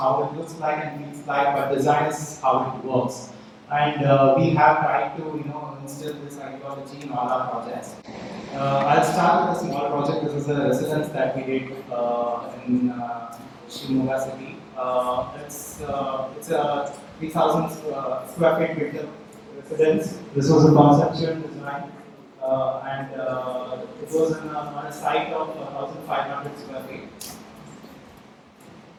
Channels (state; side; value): identical; both; correlation 1.00